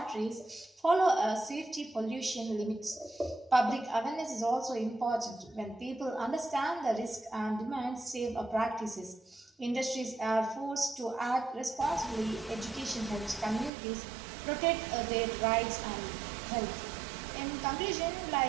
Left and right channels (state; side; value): drops out; left; at 13.7 s